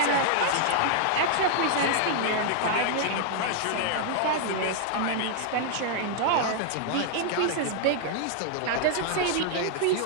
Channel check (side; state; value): both; different; correlation -0.01